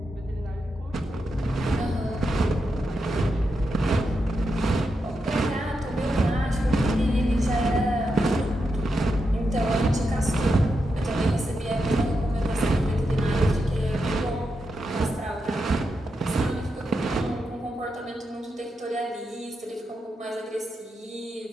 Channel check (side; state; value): both; normal; correlation 0.86